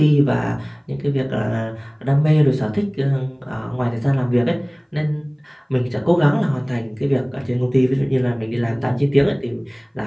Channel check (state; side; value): identical; both; correlation 1.00